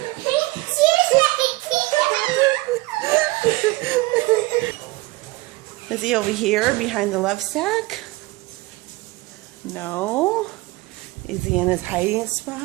Is he over here behind the love sack? No. Is he in his hiding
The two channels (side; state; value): left; quieter; 21.1 dB